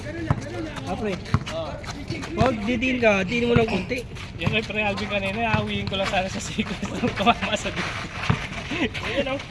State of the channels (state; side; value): identical; both; correlation 1.00